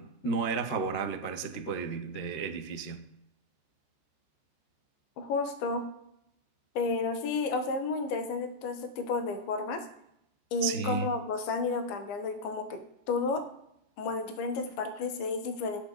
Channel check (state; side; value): late; right; 13 ms